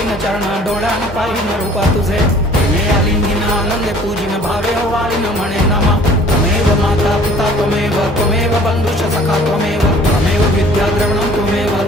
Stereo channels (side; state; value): both; normal; correlation 0.52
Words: चरण डोळ्यान पाहिन रूपा तुझे प्रेमे आलिंगिन आनंदे पूजिन भावे वाळीन म्हणे नमा त्वमेव माता पिता त्वमेव त्वमेव बंधुश्च सखा त्वमेव त्वमेव विद्या द्रविणं त्वमेव